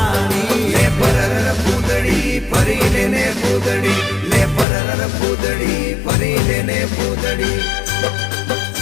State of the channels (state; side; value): drops out; right; at 4.7 s